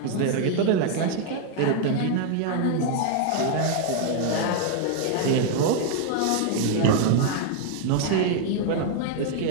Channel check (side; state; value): both; different; correlation 0.00